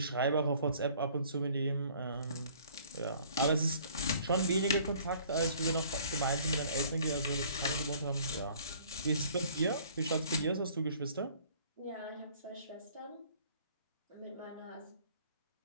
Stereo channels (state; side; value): inverted; both; correlation -0.54